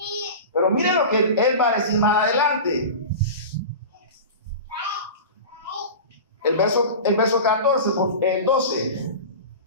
Pero miren lo que Él va a decir más adelante. El verso 14, el 12.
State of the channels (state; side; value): inverted; both; correlation -0.31